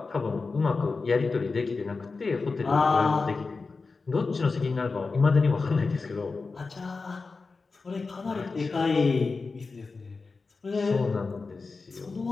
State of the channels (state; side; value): quieter; right; 4.2 dB